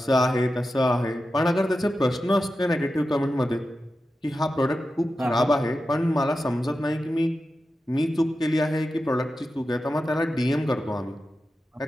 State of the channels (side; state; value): both; normal; correlation 0.91